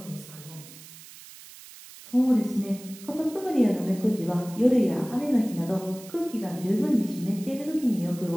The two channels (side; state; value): right; noise; hiss, 18 dB below the sound